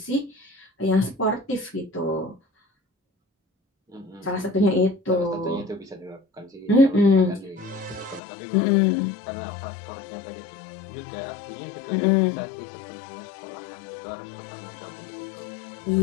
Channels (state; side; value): drops out; right; at 8.2 s